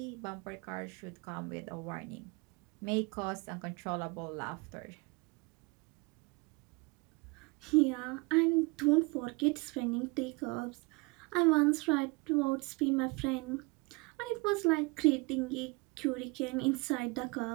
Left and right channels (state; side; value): quieter; left; 27.7 dB